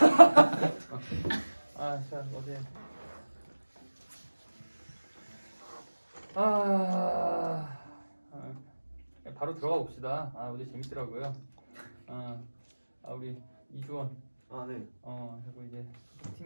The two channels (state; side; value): inverted; both; correlation -1.00